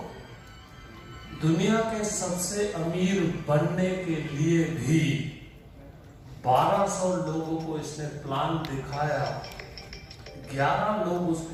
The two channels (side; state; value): both; identical; correlation 1.00